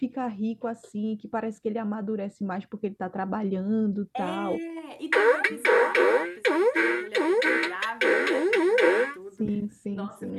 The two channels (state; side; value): identical; both; correlation 1.00